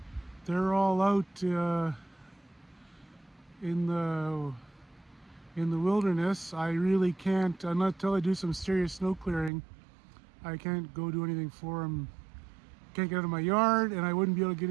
They're all out in the wilderness. I really can't, until I do some serious snow clearing, I can't go do anything for them. Can't get out of my yard, and I wouldn't be able to get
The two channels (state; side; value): drops out; left; at 9.5 s